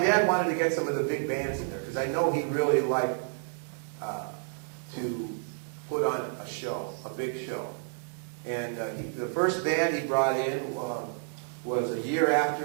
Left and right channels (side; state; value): left; silent; digital silence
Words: wanted to get some of the big bands in there, because I know he really liked to put on a show, a big show. And the first band he brought in was about a year